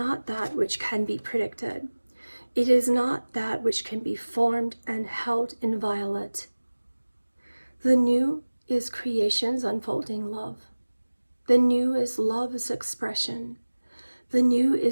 that which can be predicted. It is not that which can be formed and held inviolate. The new is creation's unfolding love. The new is love's expression. The new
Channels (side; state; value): both; inverted; correlation -1.00